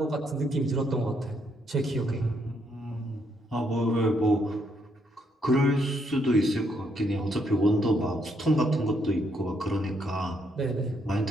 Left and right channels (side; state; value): both; normal; correlation 0.74